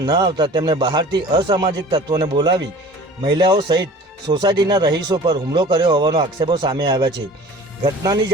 ન આવતા તેમણે બહારથી અસામાજિક તત્વોને બોલાવી મહિલાઓ સહિત સોસાયટીના રહીશો પર હુમલો કર્યો હોવાનો આક્ષેપો સામે આવ્યા છે। ઘટનાની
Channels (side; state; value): both; normal; correlation 0.43